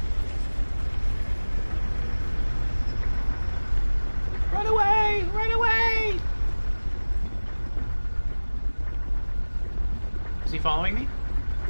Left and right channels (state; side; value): inverted; both; correlation -1.00